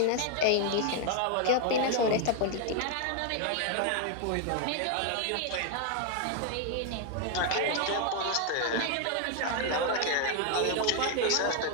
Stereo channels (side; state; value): both; different; correlation 0.00